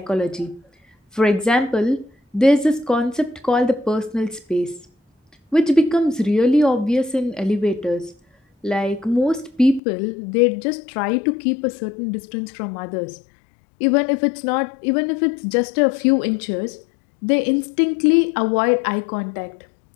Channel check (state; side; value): drops out; right; at 9.8 s